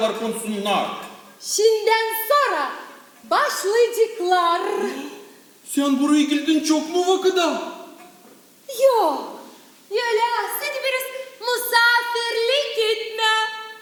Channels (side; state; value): both; identical; correlation 1.00